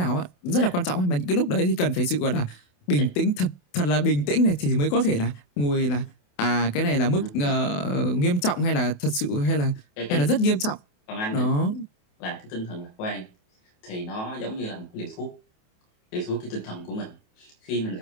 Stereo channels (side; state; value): right; late; 28 ms